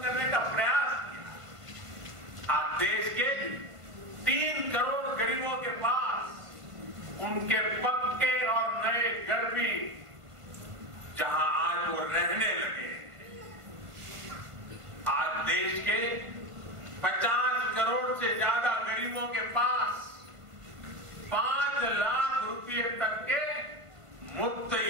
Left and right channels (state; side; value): late; left; 1.5 ms